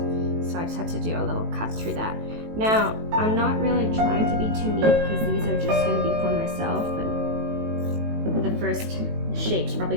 so I just have to do a little cut through that. Now, I'm not really trying to be too neat because these are just going to be for myself, and the first shape's probably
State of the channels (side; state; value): left; late; 18 ms